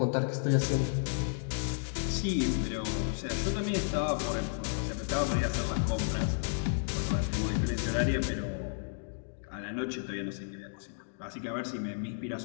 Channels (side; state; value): right; silent; digital silence